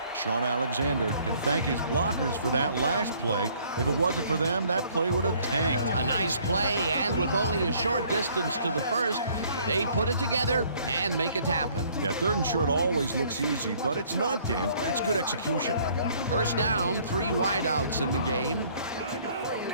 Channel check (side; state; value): both; inverted; correlation -0.60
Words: Sean Alexander can thank his blockers for that last play. If it wasn't for them, that play would have tanked. A nice play, and with only a short distance to the first, they put it together and make it happen. Yeah, 3rd and short always looks easy, but it's not, Dan. That's good execution. First down, 3 wideouts in the game.